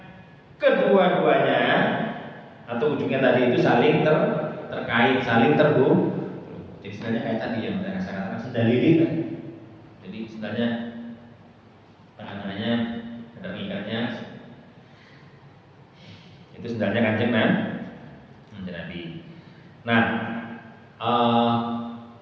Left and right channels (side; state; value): both; identical; correlation 1.00